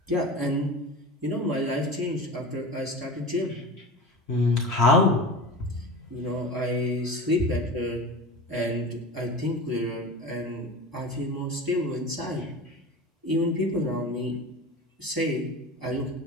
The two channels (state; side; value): normal; both; correlation 0.32